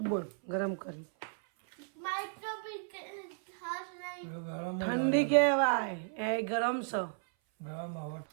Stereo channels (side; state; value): left; silent; 55 dB below the other